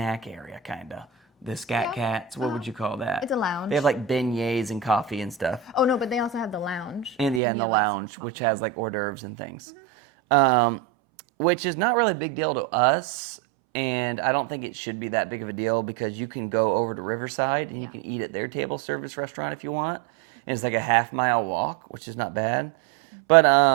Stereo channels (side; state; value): left; drops out; at 7.4 s